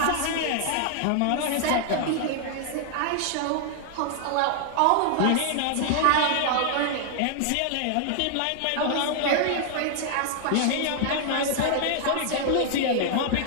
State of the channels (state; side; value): different; both; correlation 0.00